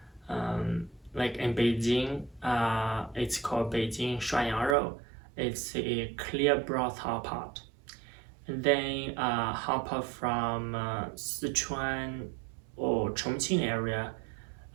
Like in Beijing, it's called Beijing 涮羊肉. It's a clear broth hot pot. And then hot pot from Sichuan or Chongqing area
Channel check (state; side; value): drops out; left; at 4.8 s